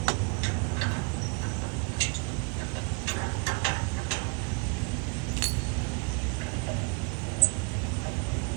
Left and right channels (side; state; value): left; quieter; 32.2 dB